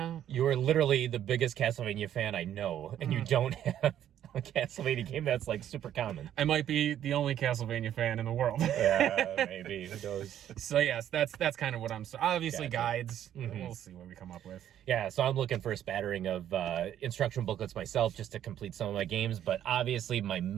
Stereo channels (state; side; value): quieter; left; 10.8 dB